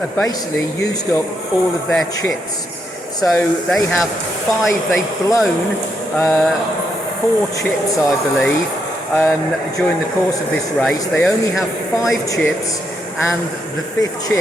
basically used up all of their chips. So they have 5, they've blown 4 chips, I believe, during the course of this race. They only have 5 chips, and the 5th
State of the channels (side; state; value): both; normal; correlation 0.79